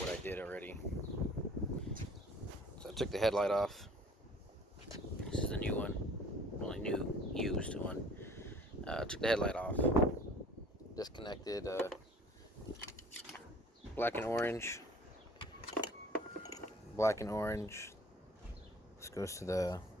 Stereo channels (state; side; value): normal; both; correlation 0.50